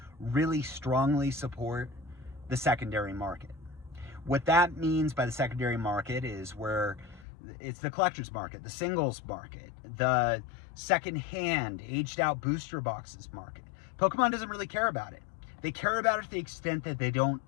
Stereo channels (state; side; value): drops out; right; at 7.2 s